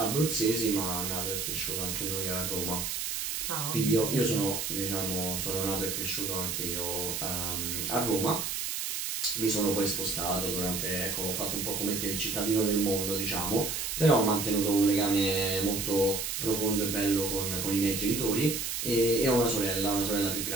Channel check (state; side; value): noise; right; hiss, 2 dB below the sound